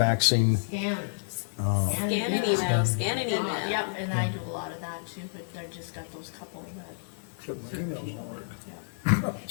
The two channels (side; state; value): right; silent; digital silence